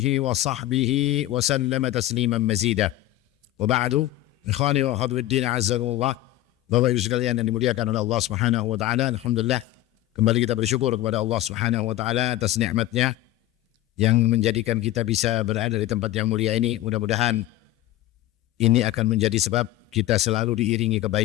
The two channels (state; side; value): quieter; right; 14.9 dB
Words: wa sahbihi wa sallama tasliman mazida. Wa ba'du, ikhwani wa akhwati azzakumullah. Bapak Ibu sekalian yang dimuliakan oleh Allah Subhanahu wa taala, alhamdulillah kembali kita bersyukur kepada Allah Subhanahu wa taala atas nikmatnya yang menjadikan kita bisa berada di tempat yang mulia ini. Mudah-mudahan ini akan menjadi sebab kita selalu diiringi